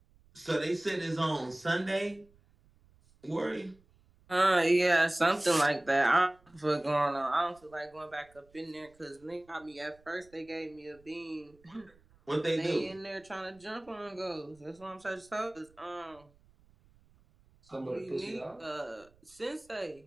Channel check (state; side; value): noise; right; rumble, 30 dB below the sound